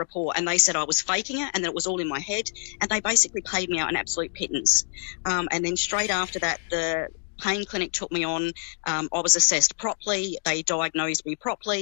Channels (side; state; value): right; silent; digital silence